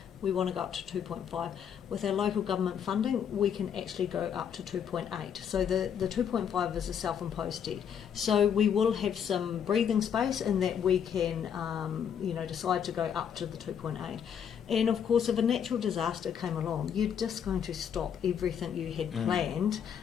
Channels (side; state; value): right; quieter; 8.1 dB